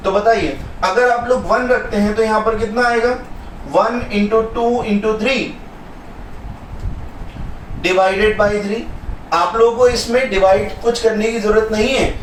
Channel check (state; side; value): identical; both; correlation 1.00